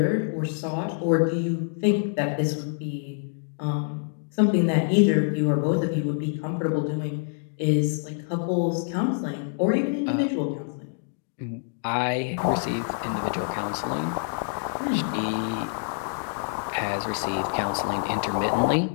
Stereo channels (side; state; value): right; silent; digital silence